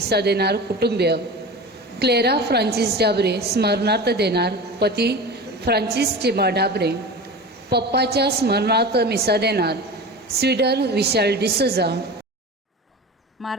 देणार कुटुंबीय, क्लेरा फ्रांसिस डाबरे स्मरणार्थ देणार पती फ्रांसिस चिमा डाबरे, पप्पाच्या स्मरणार्थ मिसा देणार स्वीडन विशाल डिसोजा,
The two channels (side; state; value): both; normal; correlation 0.32